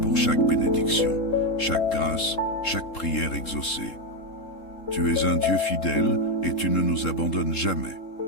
chaque bénédiction, chaque grâce, chaque prière exaucée. Tu es un Dieu fidèle et tu ne nous abandonnes jamais.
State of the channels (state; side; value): late; right; 3.7 ms